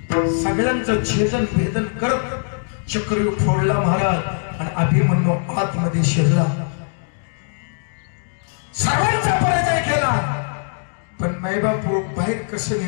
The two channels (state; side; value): silent; right; digital silence